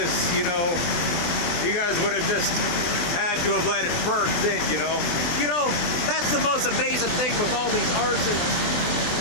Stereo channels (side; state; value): right; late; 23 ms